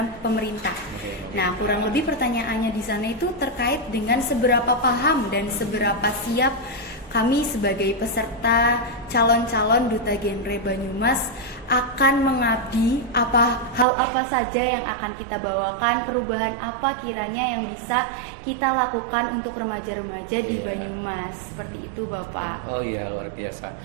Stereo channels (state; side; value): drops out; left; at 13.9 s